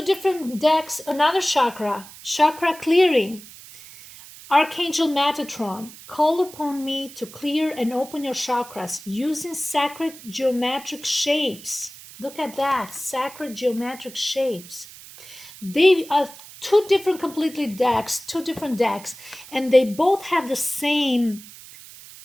different decks, another chakra. Chakra clearing. Archangel Metatron, call upon me to clear and open your chakras using sacred geometric shapes. Look at that, sacred geometric shapes. They are two different different decks, and they both have the same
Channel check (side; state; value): right; noise; hiss, 18 dB below the sound